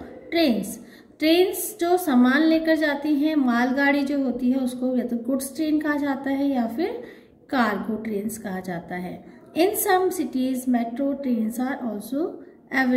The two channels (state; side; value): identical; both; correlation 1.00